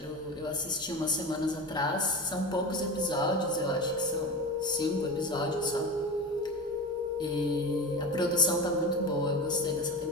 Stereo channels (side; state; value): both; normal; correlation 0.27